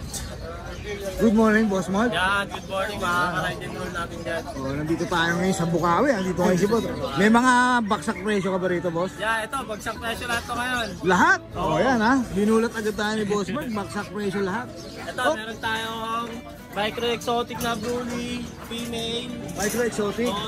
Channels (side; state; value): both; identical; correlation 1.00